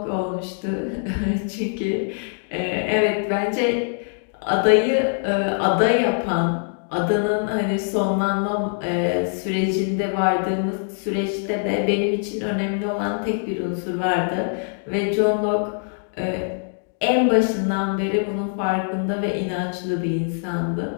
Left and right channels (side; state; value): right; silent; 63 dB below the other